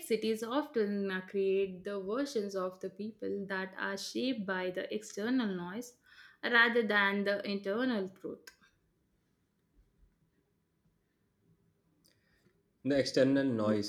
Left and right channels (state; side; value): identical; both; correlation 1.00